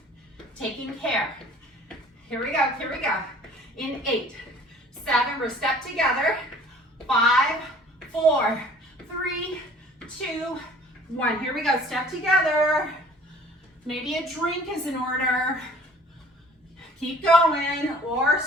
Taking care. Here we go, here we go. In 8, 7, we're step together. 5, 4, 3, 2, 1. Here we go, step together. Maybe a drink is in order. Keep going or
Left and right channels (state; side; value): normal; both; correlation 0.52